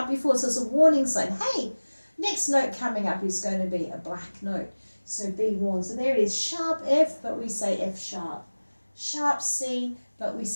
before, so it's a warning sign. Hey, next note coming up is going to be a black note. So be warned. So there it is, sharp F, but we say F sharp. Sharp C, but we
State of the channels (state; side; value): inverted; both; correlation -1.00